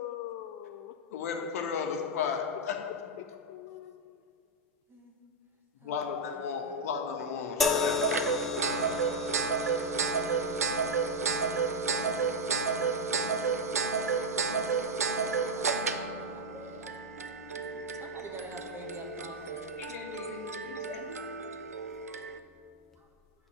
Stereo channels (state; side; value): normal; both; correlation -0.01